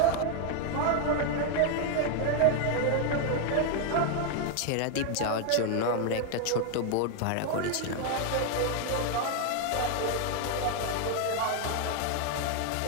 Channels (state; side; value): different; both; correlation 0.00